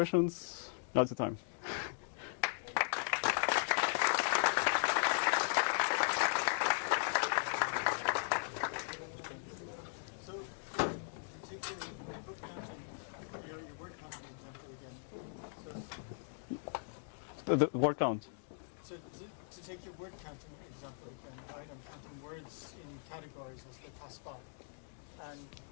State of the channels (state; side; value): silent; right; digital silence